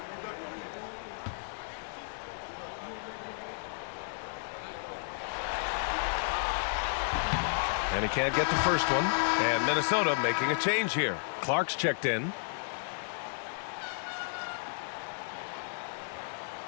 And he can't get the first one. And Minnesota making a change here. Clark's checked in.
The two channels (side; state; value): right; silent; digital silence